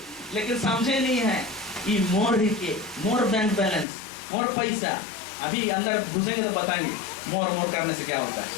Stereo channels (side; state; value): right; drops out; at 3.9 s